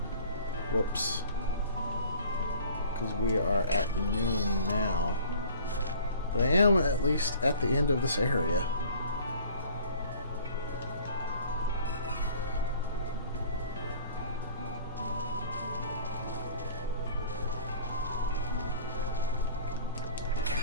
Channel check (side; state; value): both; inverted; correlation -0.48